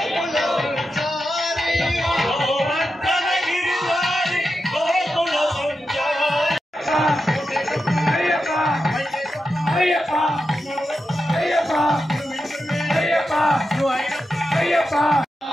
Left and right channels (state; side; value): normal; both; correlation 0.89